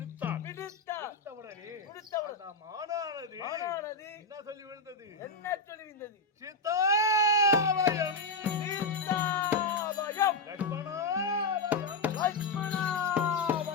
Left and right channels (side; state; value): right; quieter; 3.4 dB